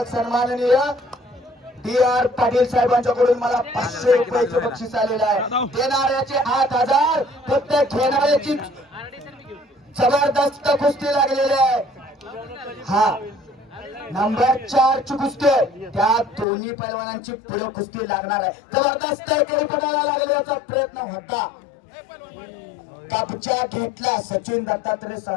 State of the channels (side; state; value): right; drops out; at 16.4 s